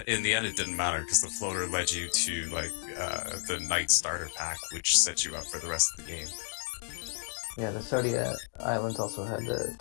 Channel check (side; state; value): right; silent; digital silence